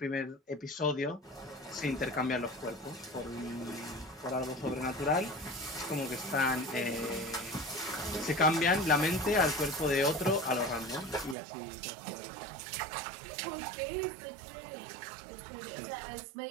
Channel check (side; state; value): left; drops out; at 11.4 s